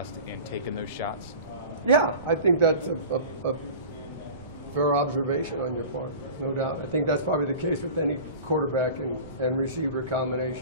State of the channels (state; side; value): inverted; both; correlation -0.37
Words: in taking those shots? Yeah, I think that's a fair observation on your part, no doubt. I think that's probably the case with any quarterback and receiver